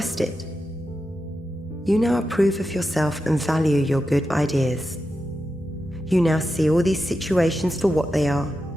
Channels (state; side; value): normal; both; correlation 0.89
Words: it. You now approve of yourself and value your good ideas. You now see all these situations for what they are.